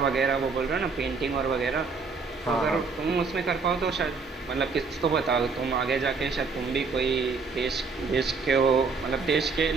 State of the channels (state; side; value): quieter; left; 4.6 dB